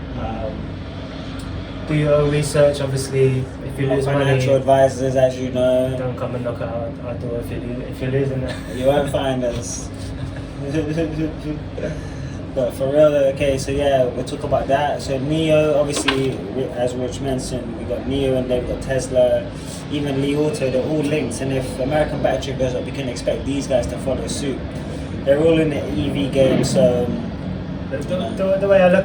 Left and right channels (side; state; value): both; identical; correlation 1.00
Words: Do your own research. Obviously, if you lose money, financial advisors, as you know, don't come and knock out our door if you're losing that. You won't find us. But for real, okay, so yeah, we'll talk about that. So NIO, obviously, as Rich mentioned, we got NIO and then we got Tesla, even Li Auto, they're all linked. And if American Battery goes up, we can expect these guys to follow suit. They're all in the EV game, so... The way I